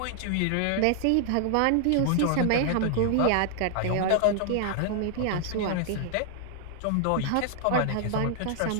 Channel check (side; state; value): both; different; correlation 0.00